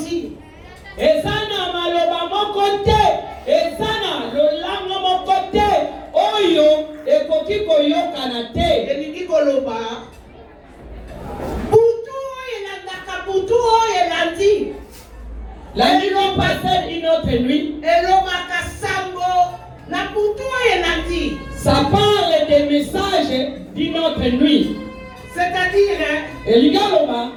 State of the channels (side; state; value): both; identical; correlation 1.00